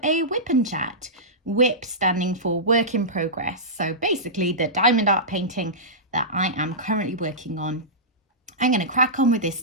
a whip and chat. WIP standing for work in progress. So basically the diamond art painting that I am currently working on. I'm going to crack on with this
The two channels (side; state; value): both; normal; correlation -0.16